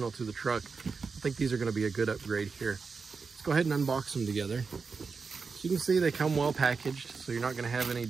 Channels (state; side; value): quieter; left; 4.9 dB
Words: to the truck. I think these are going to be a good upgrade here. Let's go ahead and unbox them together. So you can see they come well packaged, so you're not going to have any